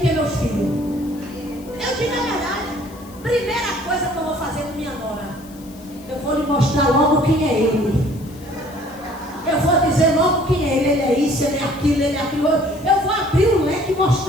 meus filhos. Eu digo a verdade. Primeira coisa que eu vou fazer com minha nora, eu vou lhe mostrar logo quem é ele. Eu vou dizer logo quem é ele. Ele é isso, ele é aquilo, ele é aquilo. Eu vou abrir o leque e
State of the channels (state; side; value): noise; left; hiss, 23 dB below the sound